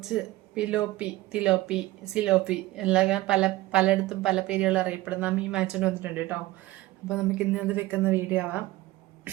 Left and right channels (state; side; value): quieter; left; 18.0 dB